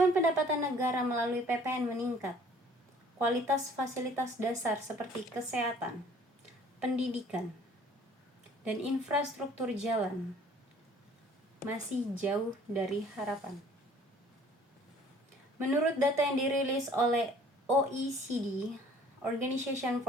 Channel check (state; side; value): normal; both; correlation 0.54